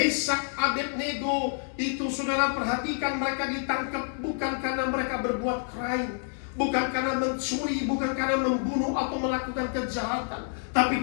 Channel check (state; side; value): silent; right; 59 dB below the other